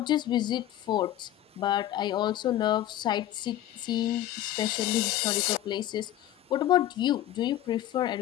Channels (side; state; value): right; quieter; 12.9 dB